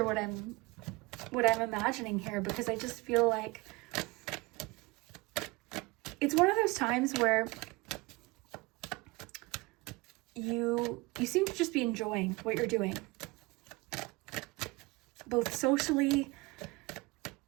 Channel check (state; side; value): quieter; left; 23.6 dB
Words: what I'm imagining here, because I just feel like it's one of those times where you seem to just be enjoying what you're doing, both socially,